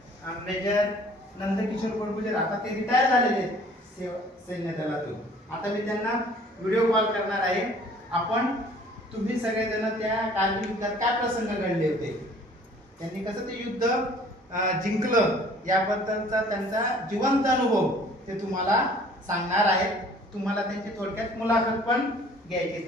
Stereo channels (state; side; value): normal; both; correlation 0.53